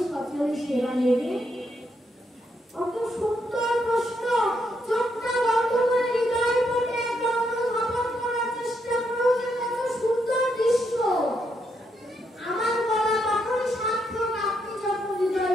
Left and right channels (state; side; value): normal; both; correlation 0.78